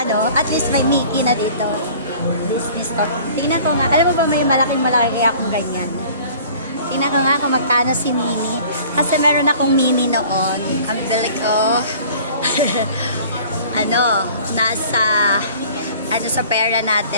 at least may Mickey na dito. Disney Store. Tingnan ko nga. Alam mo ba, may malaking-malaki akong ganyan. Tingnan ko nga kung magkano si Minnie. Kasi meron akong Minnie noon. Ang bili ko, sa pera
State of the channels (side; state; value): both; inverted; correlation -0.48